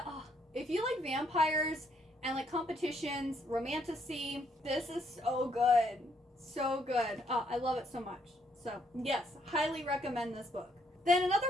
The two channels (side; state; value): both; normal; correlation 0.71